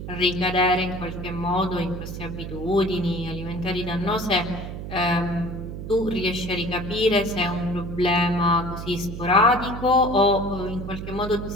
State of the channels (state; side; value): noise; right; hum, 8 dB below the sound